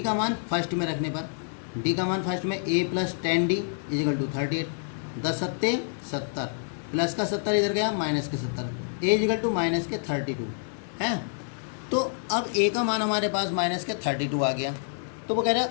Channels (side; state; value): right; silent; digital silence